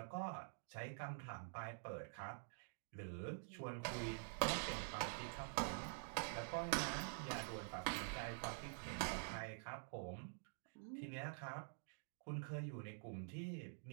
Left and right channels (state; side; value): silent; left; digital silence